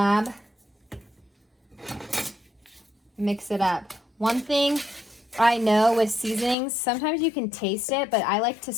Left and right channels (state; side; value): drops out; right; at 6.6 s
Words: Mix it up. One thing I know with seasonings, sometimes you can taste it, but I like to